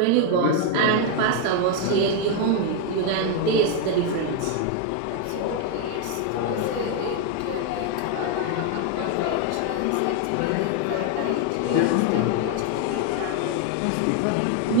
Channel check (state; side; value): different; both; correlation 0.01